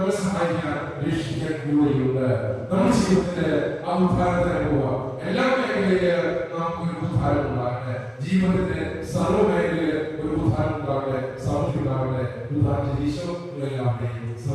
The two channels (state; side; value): identical; both; correlation 1.00